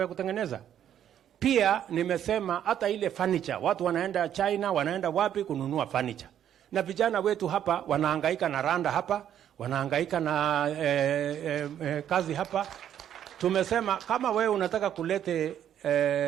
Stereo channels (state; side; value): quieter; left; 10.1 dB